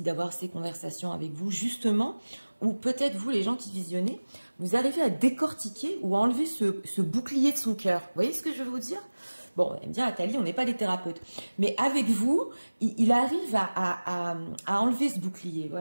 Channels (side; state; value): both; inverted; correlation -1.00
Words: d'avoir ces conversations avec vous, justement, ou peut-être vous, les gens qui visionnez, vous arrivez à décortiquer ou à enlever ce bouclier de son cœur. Vous voyez ce que je veux vous dire? Bon, elle me dit, Athalie, on n'est pas des thérapeutes. Mais avec vous, il arrive à enlever ce bouclier.